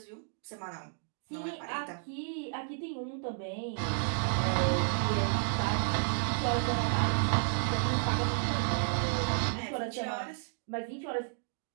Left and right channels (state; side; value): silent; left; digital silence